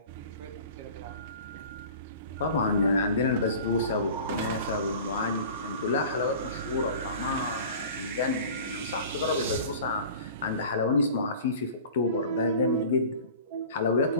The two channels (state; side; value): inverted; both; correlation -0.41